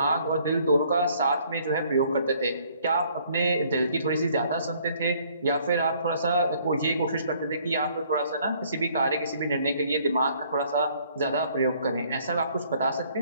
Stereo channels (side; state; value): both; inverted; correlation -0.62